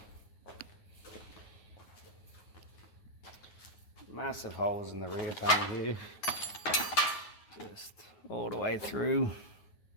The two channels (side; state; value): right; late; 9.5 ms